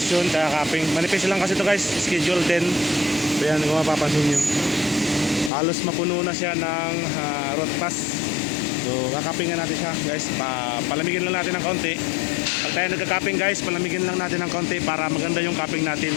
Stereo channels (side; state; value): right; drops out; at 5.5 s